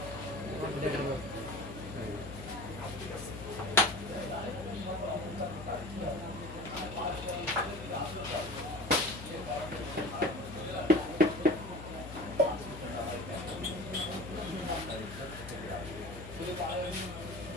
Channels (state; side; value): noise; left; hum, 11 dB below the sound